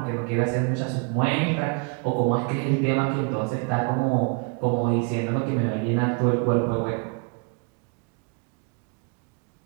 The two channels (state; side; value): quieter; left; 33.7 dB